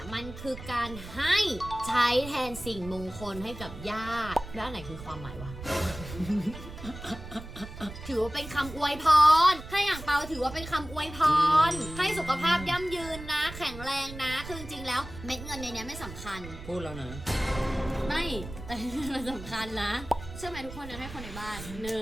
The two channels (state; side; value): noise; right; rumble, 12 dB below the sound